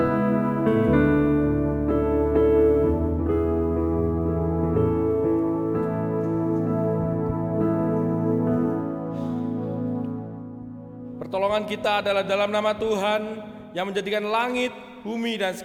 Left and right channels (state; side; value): identical; both; correlation 1.00